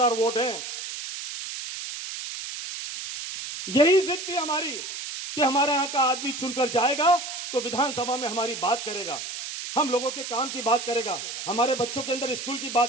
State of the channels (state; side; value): noise; right; hiss, 7 dB below the sound